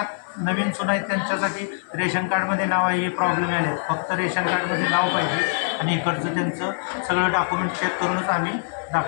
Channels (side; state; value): right; silent; 58 dB below the other